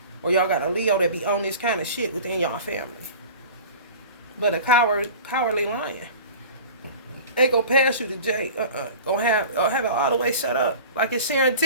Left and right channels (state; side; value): inverted; both; correlation -0.39